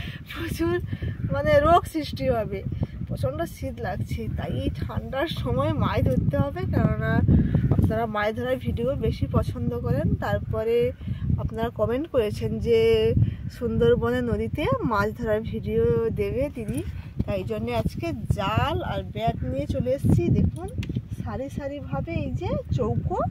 প্রচুর রোগ সৃষ্টি হবে। প্রচণ্ড শীত লাগছে, তাই এই ঠান্ডার সময় মাছ ধরতে হবে, কেননা আপনারা মাছ ধরার ভিডিও বেশি পছন্দ করেন। তারপরে আপনারা কমেন্ট করেছেন যে সুন্দরবনে নদীতে মাছ ধরার ভিডিও দেবে দিদি, তাই জন্য আজকে জাল আর ব্যাট নিয়ে চলে এসেছি। দেখুন সারি সারিভাবে এই যে চৌকো,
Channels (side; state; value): both; identical; correlation 1.00